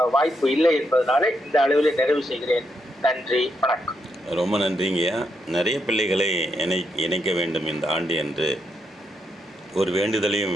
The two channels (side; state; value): both; normal; correlation 0.80